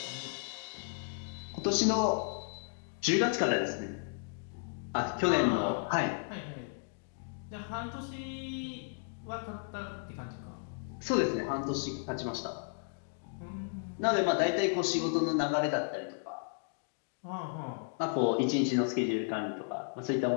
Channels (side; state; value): right; silent; digital silence